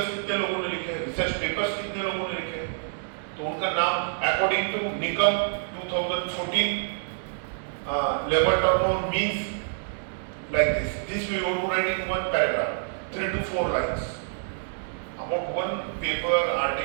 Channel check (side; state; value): left; silent; digital silence